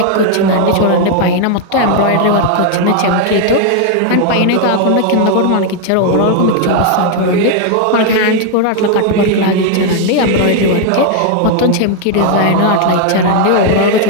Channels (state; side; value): different; both; correlation 0.00